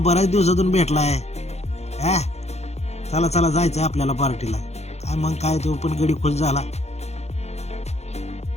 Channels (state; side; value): late; right; 0.31 ms